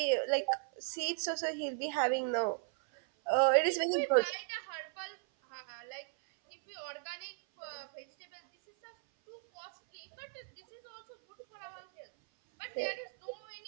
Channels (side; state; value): left; silent; 54 dB below the other